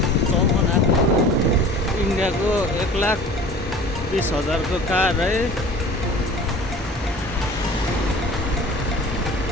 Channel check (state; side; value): normal; both; correlation 0.42